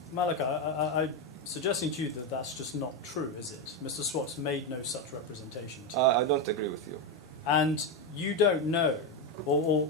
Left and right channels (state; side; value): normal; both; correlation 0.10